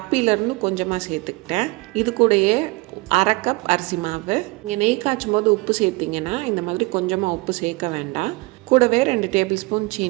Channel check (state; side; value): quieter; left; 24.3 dB